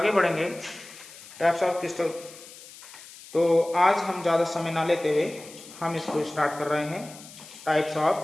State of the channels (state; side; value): noise; left; hiss, 18 dB below the sound